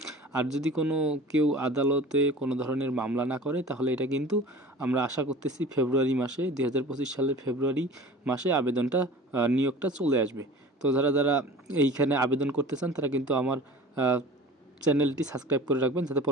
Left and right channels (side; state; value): both; normal; correlation 0.41